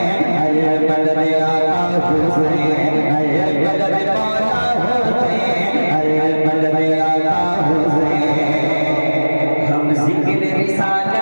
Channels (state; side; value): inverted; both; correlation -1.00